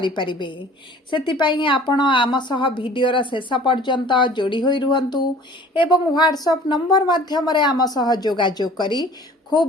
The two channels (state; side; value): normal; both; correlation 0.48